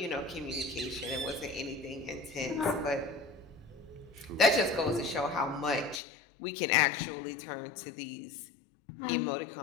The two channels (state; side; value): drops out; right; at 6.0 s